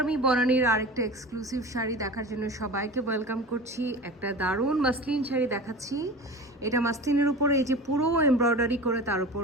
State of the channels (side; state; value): both; normal; correlation 0.34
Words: me বনানীর আরেকটা exclusive sari দেখার জন্য সবাইকে ওয়েলকাম করছি। একটা দারুণ মাসলিন শাড়ি দেখাচ্ছি। এটা মাসলিনের উপরে এই যে পুরো এমব্রয়ডারি করে তার উপর